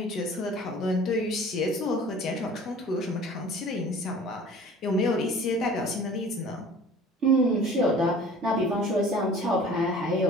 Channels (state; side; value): normal; both; correlation 0.46